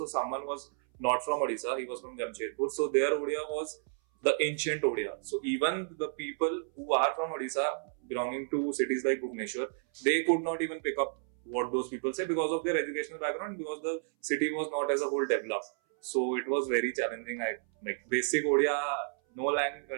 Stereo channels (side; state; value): left; silent; 57 dB below the other